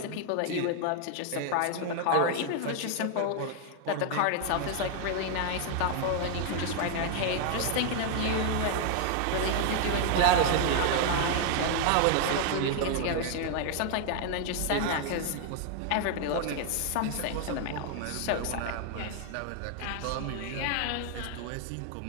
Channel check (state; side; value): different; both; correlation 0.00